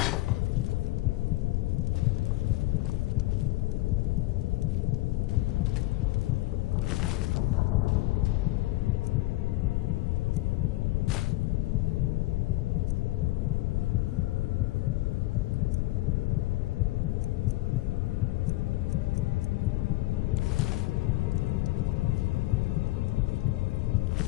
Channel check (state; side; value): quieter; right; 19.0 dB